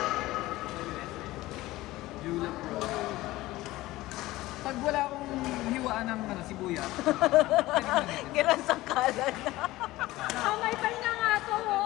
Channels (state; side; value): quieter; right; 17.8 dB